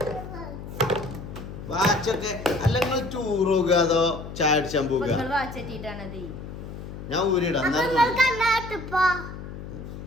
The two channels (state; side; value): noise; left; hum, 11 dB below the sound